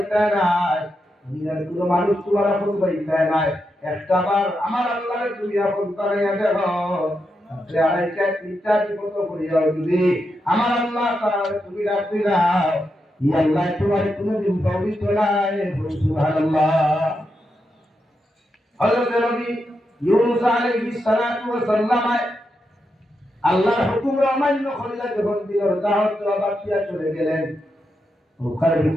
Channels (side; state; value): both; normal; correlation 0.85